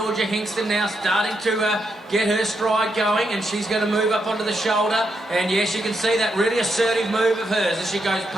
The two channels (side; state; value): both; normal; correlation 0.81